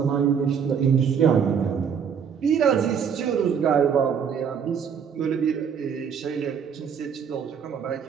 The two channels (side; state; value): left; quieter; 7.3 dB